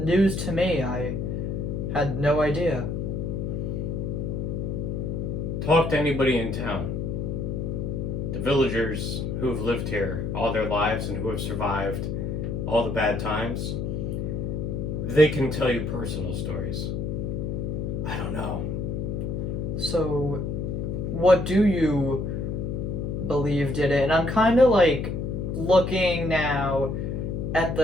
to me. I had no idea. Talk to anybody in town. The villagers who have lived here all their lives and who have survived all the bad times, they can tell you personal stories. I don't know. So, what do you believe did it? And I'm kind of like looking now at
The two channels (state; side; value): noise; left; hum, 2 dB below the sound